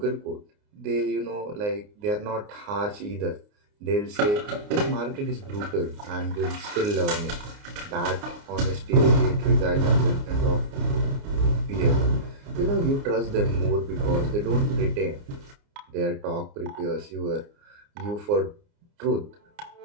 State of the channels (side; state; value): left; late; 29 ms